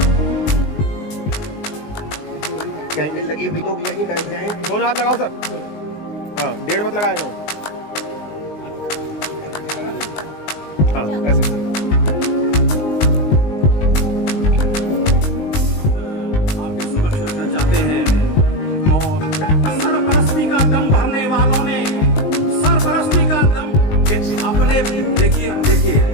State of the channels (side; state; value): right; late; 19 ms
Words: कैंडल लगी हुई, लोग यहीं बैठ जाएं। दोनों हाथ लगाओ सर। हाँ, डेढ़ मत लगाए ना। हाँ, ऐसे। आपके समक्ष रखना चाहते हैं और सरपरस्ती का दम भरने वालों ने सरपरस्ती का दम अपने देखिए